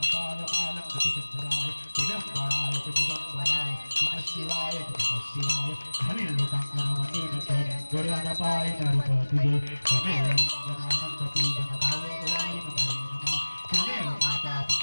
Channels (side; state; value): both; inverted; correlation -1.00